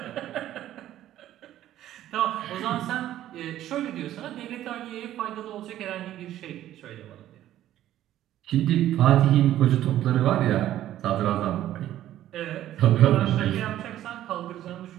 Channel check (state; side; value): quieter; left; 12.8 dB